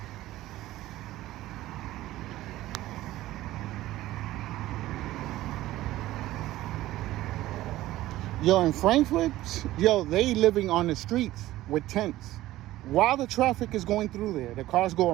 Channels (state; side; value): quieter; left; 15.8 dB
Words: Yo, in Frankfurt, yo, they living on the streets with tents. While the traffic is going through there, the cars